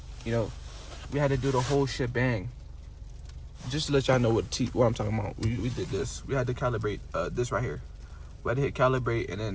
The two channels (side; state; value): both; identical; correlation 1.00